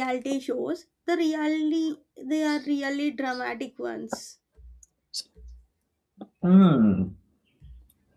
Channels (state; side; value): identical; both; correlation 1.00